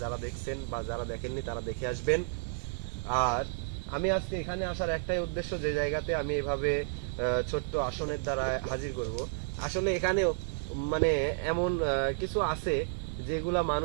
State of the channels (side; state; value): left; silent; digital silence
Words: যারা দেখছেন বা যারা দেখেননি তারা দেখে আসবেন। আর আমি আজকে এখানে আসার একটাই উদ্দেশ্য, যে জায়গাতে আমি এভাবে ছোট্ট আসনের দ্বারা হাজির করব। আসলে এখানেও মানে এমন কিছু আছে যেগুলা